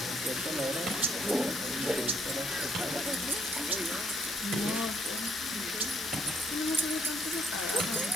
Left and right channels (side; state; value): both; normal; correlation 0.70